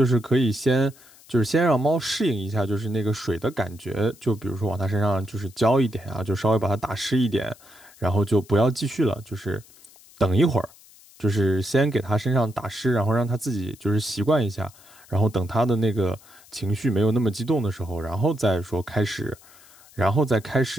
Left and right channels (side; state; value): left; noise; hiss, 25 dB below the sound